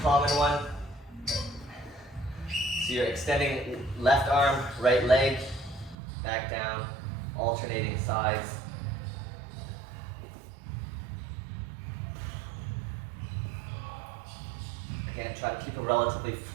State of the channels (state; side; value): drops out; left; at 6.0 s